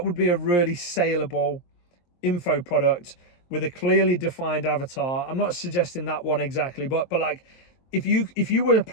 would be a really saleable info product with a clearly defined avatar. I'm not suggesting that one exactly, but like, if you were a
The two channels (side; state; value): right; late; 23 ms